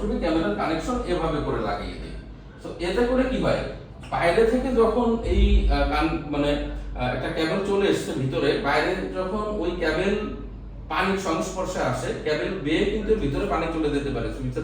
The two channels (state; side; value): identical; both; correlation 1.00